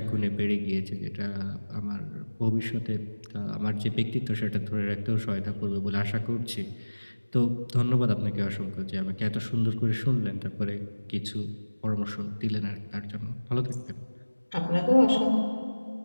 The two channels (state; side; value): inverted; both; correlation -1.00